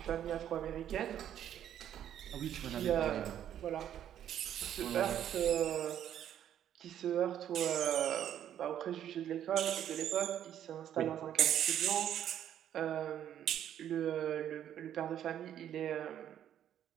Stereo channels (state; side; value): quieter; left; 10.4 dB